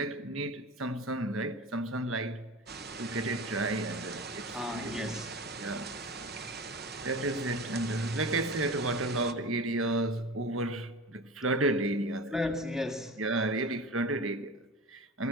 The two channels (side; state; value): both; normal; correlation 0.32